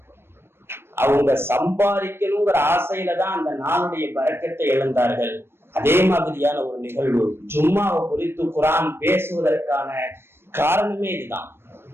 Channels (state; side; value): late; left; 0.12 ms